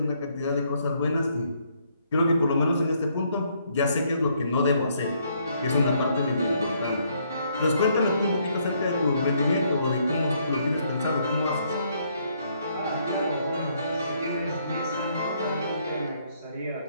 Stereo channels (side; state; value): both; inverted; correlation -0.70